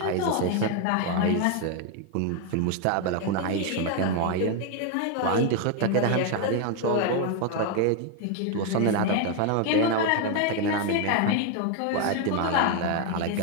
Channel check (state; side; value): different; both; correlation 0.01